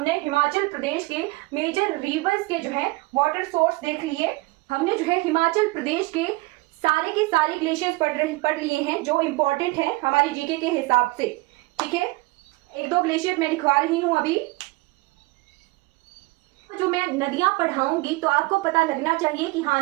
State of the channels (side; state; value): left; quieter; 22.7 dB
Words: हिमाचल प्रदेश के मेजर रिवर्स के जो है वाटर सोर्स देख लिए। हमने जो है हिमाचल प्रदेश के सारे ग्लेशियर्स पढ़ लिए हैं जो इंपॉर्टेंट है हमारी जीके के हिसाब से। ठीक है, 1-2 ग्लेशियर मैं लिखवा रही हूं अभी। जो मैं नदियां पढ़ाऊंगी तो आपको पता लगना चाहिए कि हाँ